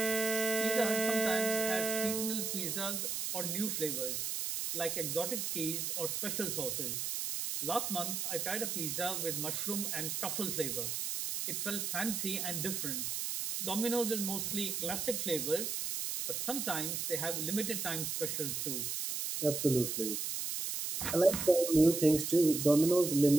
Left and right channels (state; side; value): noise; right; hiss, 2 dB below the sound